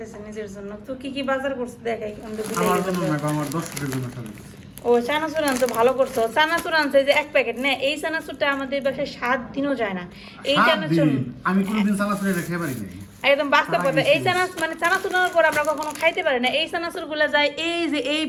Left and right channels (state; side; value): identical; both; correlation 1.00